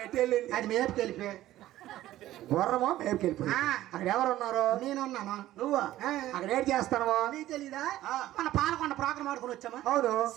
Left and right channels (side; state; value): left; quieter; 14.5 dB